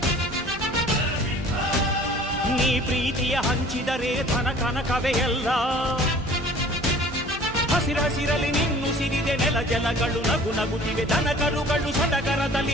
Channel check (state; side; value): normal; both; correlation 0.49